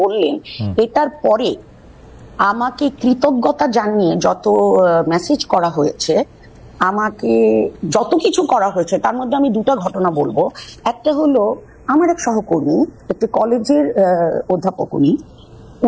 বললেন, এটার পরে আমাকে কৃতজ্ঞতা জানিয়ে যত মেসেজ করা হয়েছে, আমাকে যত কিছু করা হয়েছে, তার মধ্যে আমি দুটা ঘটনা বলবো। একটা হলো আমার এক সহকর্মী, একটি কলেজের অধ্যাপক,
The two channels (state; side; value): identical; both; correlation 1.00